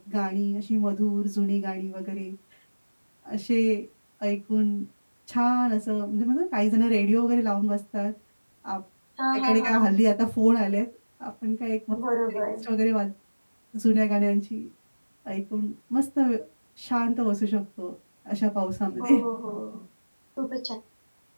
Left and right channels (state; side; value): inverted; both; correlation -1.00